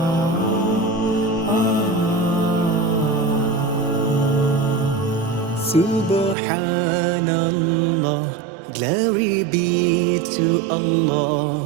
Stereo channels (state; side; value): drops out; left; at 6.4 s